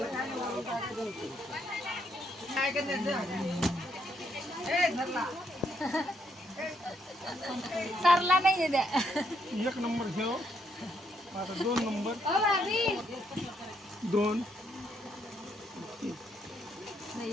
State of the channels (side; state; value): both; normal; correlation 0.75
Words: सरला नाही द्या. 1 नंबर घेऊ आता 2 नंबर 2